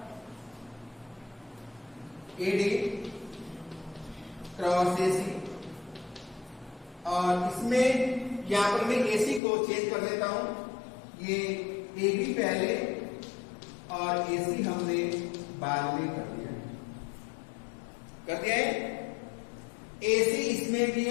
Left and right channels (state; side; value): drops out; right; at 9.4 s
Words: AD क्रॉस AC, और इसमें यहां पर मैं AC को चेंज कर देता हूं, ये AB पहले और AC हमने बाद में कर दिया है। AC इसमें भी